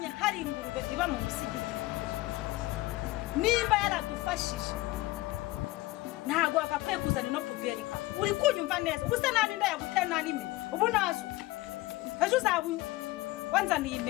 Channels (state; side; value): quieter; right; 19.4 dB